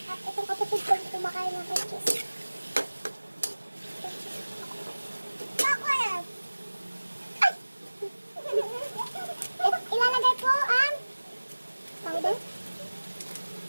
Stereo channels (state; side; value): inverted; both; correlation -1.00